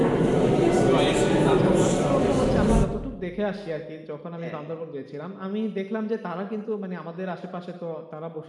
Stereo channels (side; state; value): both; identical; correlation 1.00